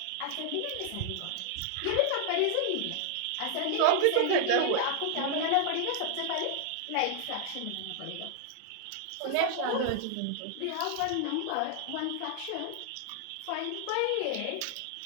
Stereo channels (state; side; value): different; both; correlation 0.00